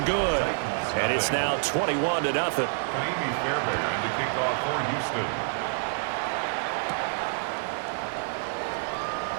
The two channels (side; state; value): left; silent; 60 dB below the other